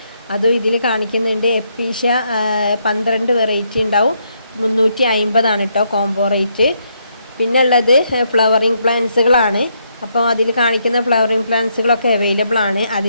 അതും ഇതിൽ കാണിക്കുന്നുണ്ട്. എപ്പീഷ്യ 12 വെറൈറ്റി ഉണ്ടാവും. 350 കേട്ടോ കോംബോ റേറ്റ്. പിന്നെ ഉള്ളത് ഫ്ലവറിങ് പ്ലാന്റ്സുകളാണ്. അപ്പോൾ അതിൽ കാണിക്കുന്ന ഫ്ലവറിങ് പ്ലാന്റ്സുകളൊക്കെ അവൈലബിൾ ആണ്.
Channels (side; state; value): both; inverted; correlation -0.76